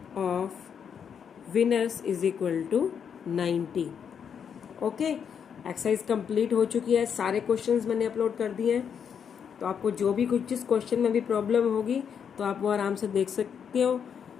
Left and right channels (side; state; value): right; quieter; 7.5 dB